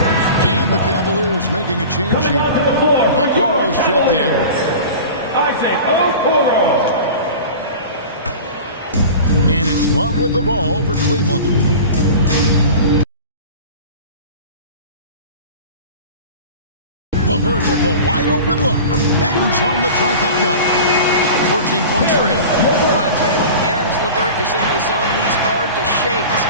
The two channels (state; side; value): inverted; both; correlation -0.36